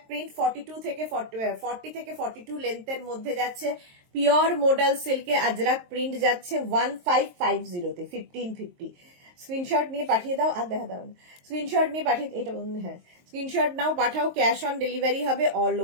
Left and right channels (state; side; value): late; left; 23 ms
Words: প্রিন্ট 42 থেকে 40 থেকে 42 লেন্থের মধ্যে যাচ্ছে। পিওর মডেল সিল্কে আজরাক প্রিন্ট যাচ্ছে 1550 তে, 1550। স্ক্রিনশট নিয়ে পাঠিয়ে দাও, আর দেখা দাও, স্ক্রিনশট নিয়ে পাঠিয়ে, এটা হ্যাঁ, স্ক্রিনশট নাও, পাঠাও, ক্যাশ অন ডেলিভারি হবে অল